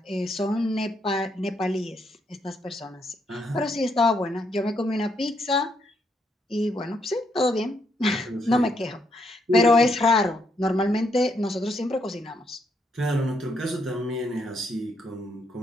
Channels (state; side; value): normal; both; correlation 0.75